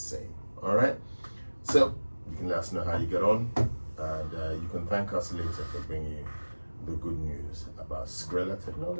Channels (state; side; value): inverted; both; correlation -1.00